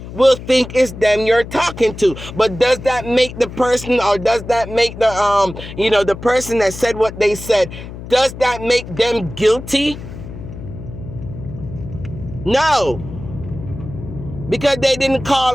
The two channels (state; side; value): noise; left; hum, 12 dB below the sound